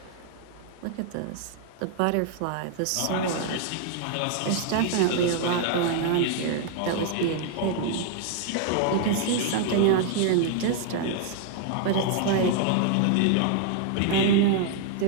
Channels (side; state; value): both; different; correlation 0.00